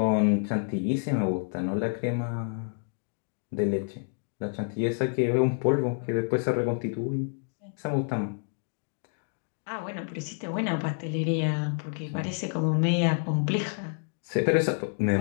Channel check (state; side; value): silent; right; 57 dB below the other